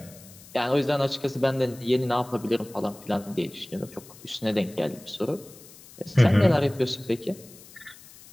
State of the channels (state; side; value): noise; left; hiss, 21 dB below the sound